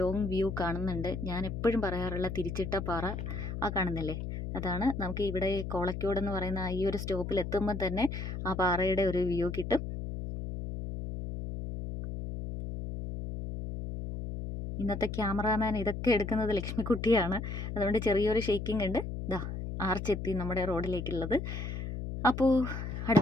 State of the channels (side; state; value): left; noise; hum, 5 dB below the sound